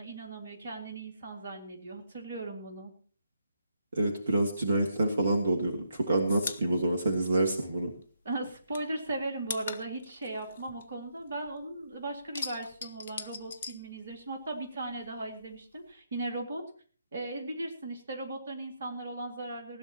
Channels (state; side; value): inverted; both; correlation -0.78